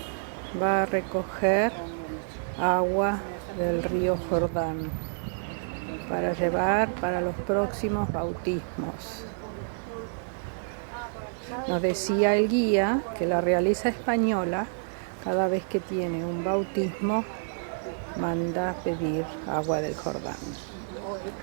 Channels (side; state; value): left; silent; digital silence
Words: va a recoger agua del río Jordán para llevar para los próximos bautismos. Nos decía el guía que la realeza española, cada vez que tiene un bautismo, manda pedir agua del Jordán.